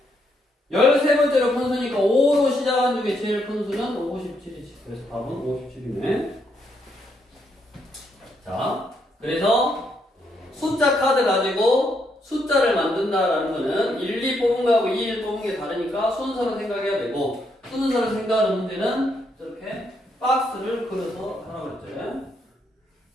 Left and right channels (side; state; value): both; normal; correlation 0.76